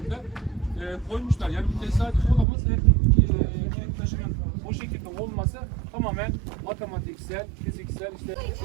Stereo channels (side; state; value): left; drops out; at 2.5 s